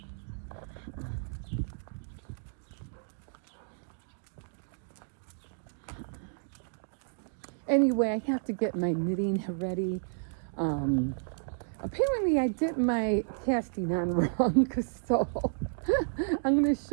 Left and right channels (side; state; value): left; silent; digital silence